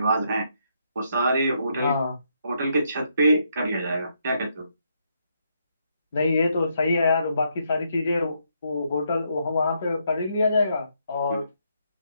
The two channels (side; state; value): both; inverted; correlation -0.76